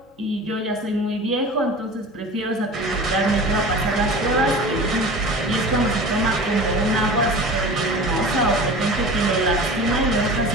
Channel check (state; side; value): normal; both; correlation 0.36